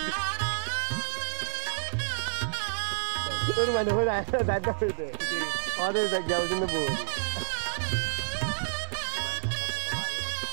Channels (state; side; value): silent; left; 58 dB below the other